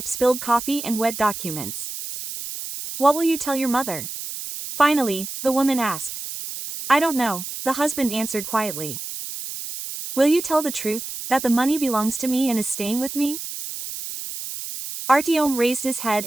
spilled coffee and wet documents. What will you tell your mother? Finally, the woman asked. I don't know, the husband answered quietly. Will you tell the truth, that the money belongs to me and is staying with me? Artyom raised his head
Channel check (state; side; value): noise; right; hiss, 8 dB below the sound